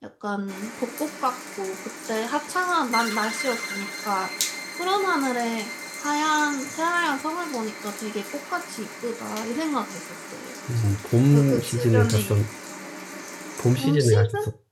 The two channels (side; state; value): both; identical; correlation 1.00